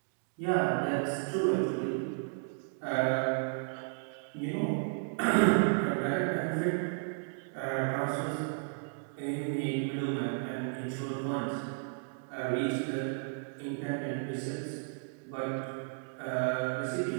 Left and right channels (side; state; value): left; silent; digital silence